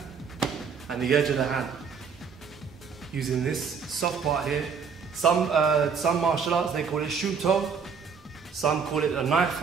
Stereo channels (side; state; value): left; quieter; 6.0 dB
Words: and the edge of the hand. Using this soft part here. Some martial arts, they call it shuto, some call it a knife